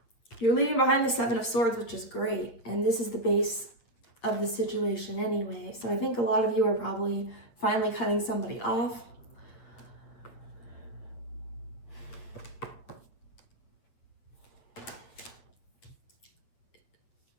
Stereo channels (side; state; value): right; late; 8.9 ms